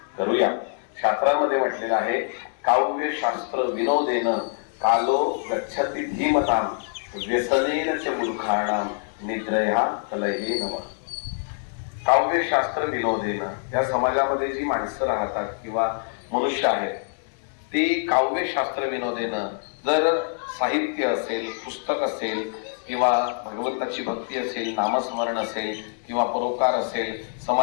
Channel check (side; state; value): right; silent; digital silence